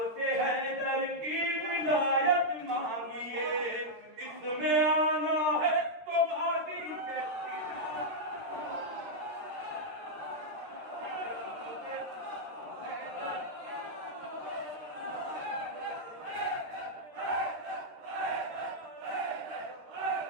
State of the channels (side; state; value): left; late; 13 ms